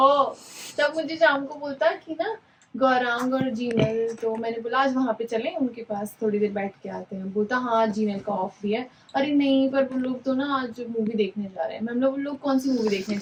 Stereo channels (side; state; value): both; identical; correlation 1.00